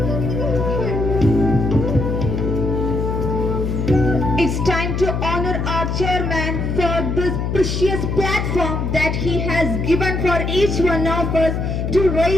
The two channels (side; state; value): left; noise; hum, 1 dB below the sound